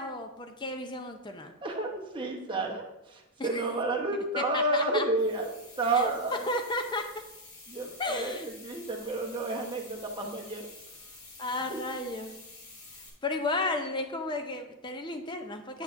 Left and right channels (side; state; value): both; normal; correlation 0.03